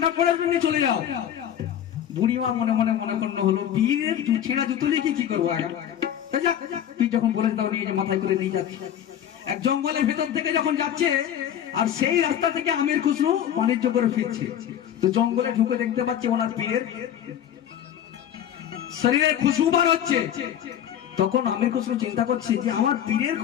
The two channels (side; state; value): right; quieter; 10.2 dB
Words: পরে নিয়ে চলে যাও। বুড়িমা মনে মনে করলো হলো, বীরের ছেঁড়া জুতো নিয়ে কি করবো? তুই যখন বলেছ তখন নিয়ে মাথায় করে নিয়ে যাচ্ছি। এক জঙ্গলের ভেতর থেকে যখন যাচ্ছে, আর সেই রাস্তা থেকে আমির খুসরু বাণিজ্য করে ফিরছে, তো জঙ্গলে ঢুকে দেখতে পাচ্ছে ওনার পীরের শরীরের খুশবু বার হচ্ছে। তখন আমির খুসরু চিন্তা করছে যে আমার পীরের